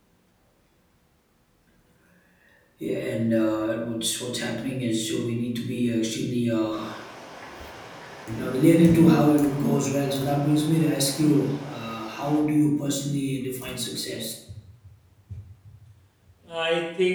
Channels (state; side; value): identical; both; correlation 1.00